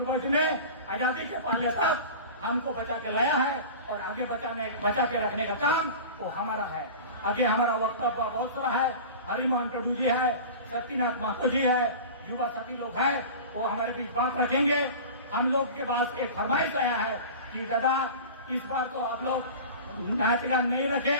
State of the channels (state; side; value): inverted; both; correlation -0.35